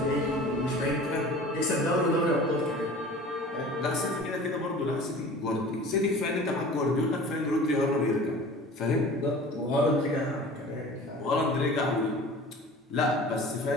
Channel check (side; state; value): both; normal; correlation 0.41